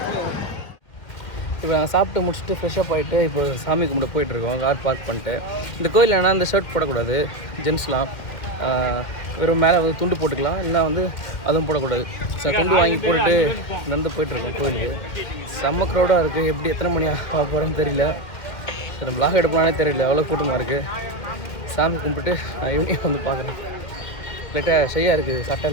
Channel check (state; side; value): late; right; 1.9 ms